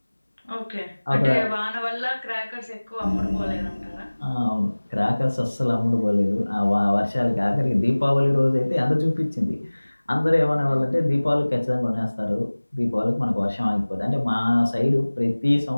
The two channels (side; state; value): both; inverted; correlation -1.00